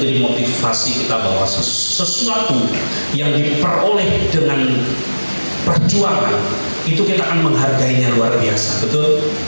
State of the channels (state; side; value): inverted; both; correlation -1.00